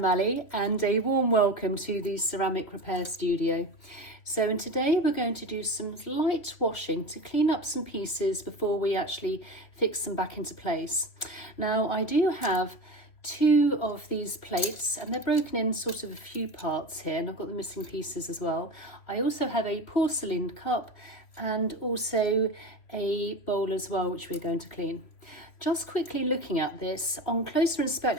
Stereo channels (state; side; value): late; right; 3.3 ms